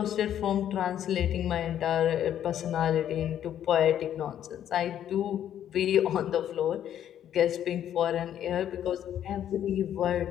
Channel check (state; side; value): quieter; right; 10.5 dB